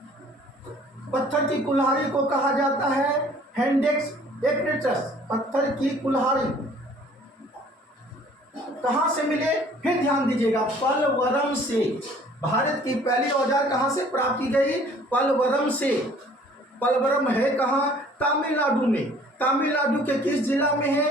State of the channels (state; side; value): normal; both; correlation 0.54